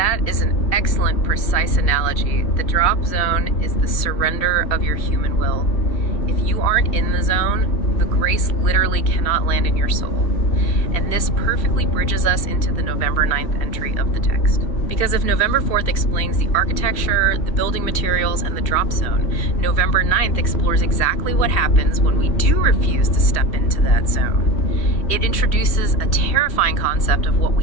is an excellent, precise analogy. The drop zone is the surrender of your human will. If you aren't in the zone, the grace literally cannot land in your soul. And this perfectly bridges us into the November 9th entry of the text. Because if November 4th explains the architecture, the building materials, and the drop zone, November 9th explores exactly what happens when we do refuse to step into that zone. It introduces a terrifying concept of what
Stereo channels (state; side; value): late; right; 3.1 ms